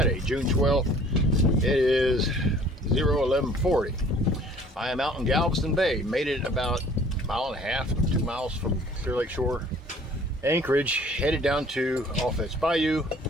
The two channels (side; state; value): both; normal; correlation 0.53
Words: June 12th. It is 11:40. I am out in Galveston Bay. Made it about a mile and a half, 2 miles from Clear Lake Shore, Anchorage, headed down to Offense Bayou,